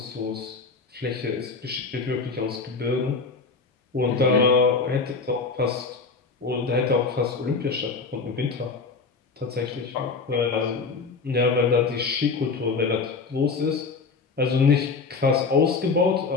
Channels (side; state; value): right; quieter; 4.6 dB